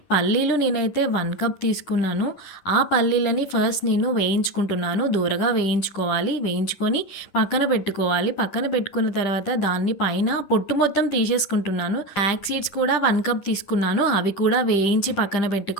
పల్లీలు నేనైతే 1 కప్ తీసుకున్నాను. ఆ పల్లీలని ఫస్ట్ నేను వేయించుకుంటున్నాను. దూరగా వేయించుకోవాలి. వేయించుకొని పక్కన పెట్టుకోవాలి. పక్కన పెట్టుకున్న తర్వాత దాన్ని పైన పొట్టు మొత్తం తీసేసుకుంటున్నాను. ఫ్లాక్స్ సీడ్స్ కూడా 1 కప్ తీసుకున్నాను. అవి కూడా వేయించి పక్కన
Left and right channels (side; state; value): right; late; 10 ms